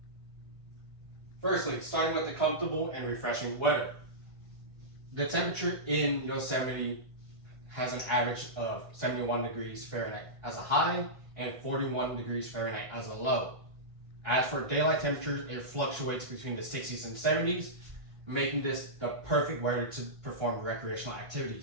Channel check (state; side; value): late; left; 1.5 ms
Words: Firstly, starting with the comfortable and refreshing weather. The temperature in Yosemite has an average of 71 degrees Fahrenheit as a high and 41 degrees Fahrenheit as a low. As for daylight temperatures, it fluctuates between the 60s and 70s, making this the perfect weather to perform recreational